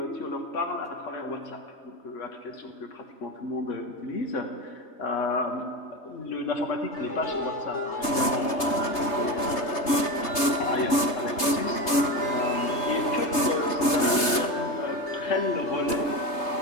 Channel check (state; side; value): late; right; 3.3 ms